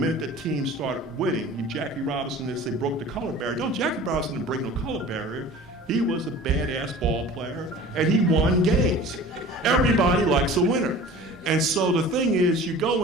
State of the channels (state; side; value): normal; both; correlation 0.42